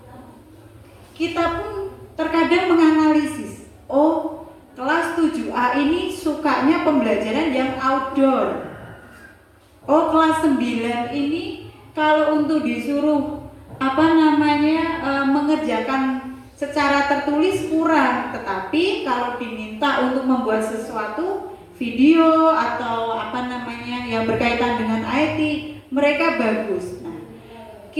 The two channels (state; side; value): identical; both; correlation 1.00